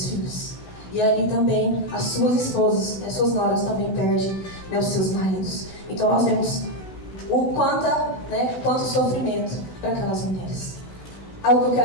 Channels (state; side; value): late; right; 16 ms